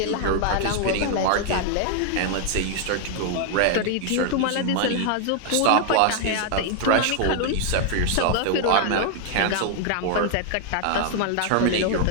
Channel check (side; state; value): both; different; correlation 0.00